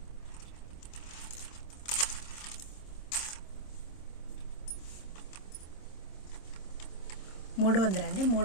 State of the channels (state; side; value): late; right; 26 ms